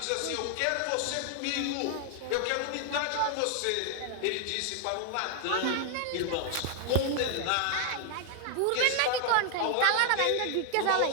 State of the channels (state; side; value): different; both; correlation 0.00